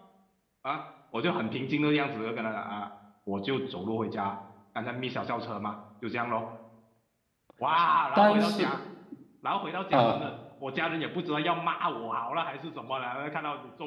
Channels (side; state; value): both; identical; correlation 1.00